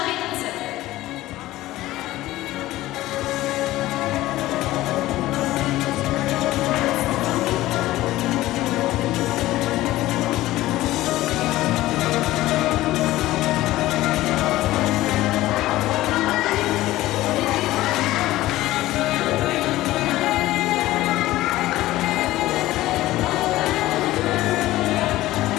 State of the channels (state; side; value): quieter; right; 16.4 dB